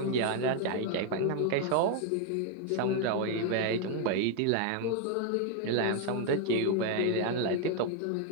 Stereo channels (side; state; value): both; different; correlation 0.00